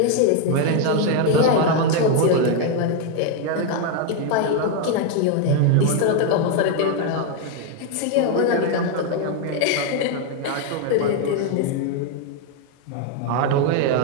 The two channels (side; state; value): both; different; correlation 0.01